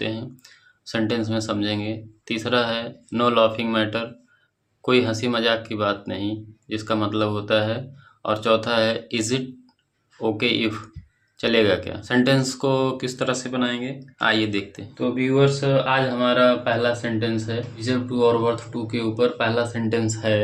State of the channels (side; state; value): both; identical; correlation 1.00